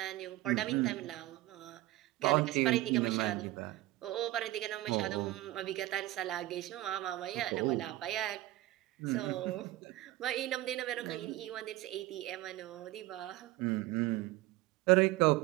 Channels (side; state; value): left; quieter; 17.1 dB